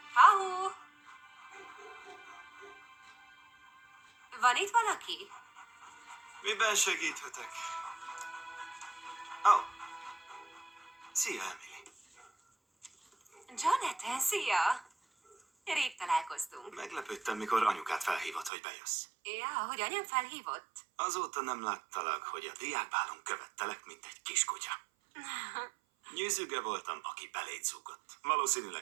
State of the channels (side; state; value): left; drops out; at 18.5 s